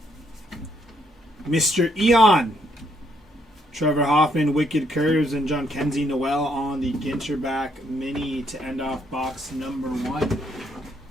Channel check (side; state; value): both; normal; correlation 0.73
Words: Mr. Eon. Trevor Hoffman, Wicked Curves, and John Kenzie Noel on the Ginter back mini to end off box number 1.